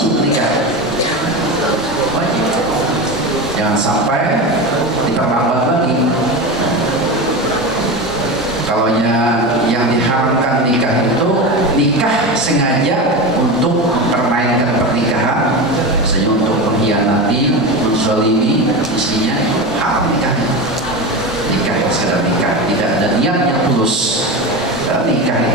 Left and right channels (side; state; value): both; normal; correlation 0.23